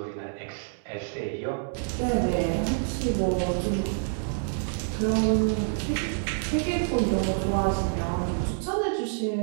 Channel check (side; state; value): left; silent; digital silence